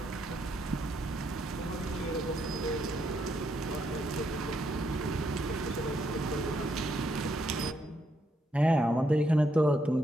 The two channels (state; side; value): normal; both; correlation 0.76